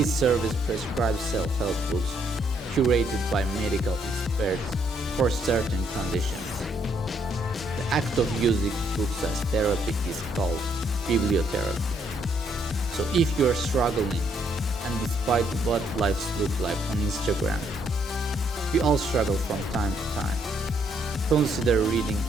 service prescribes self-help books curated by medical experts for certain conditions. The act of using books as therapy is called bibliotherapy. So if you're struggling, and despite what lives look like on Instagram, we all struggle from time to time, consider reading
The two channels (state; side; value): normal; both; correlation 0.71